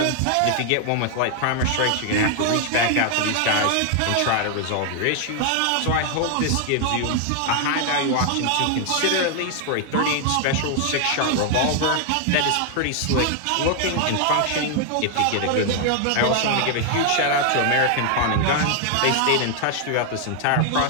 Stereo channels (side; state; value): both; different; correlation 0.00